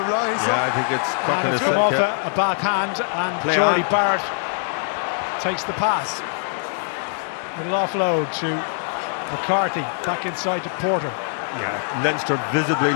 I think it's and it's come off a bad hand, and Jordy Barrett takes the pass. Little offload to McCarthy, back inside to Porter. Yeah, Leinster visibly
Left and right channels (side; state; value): right; silent; digital silence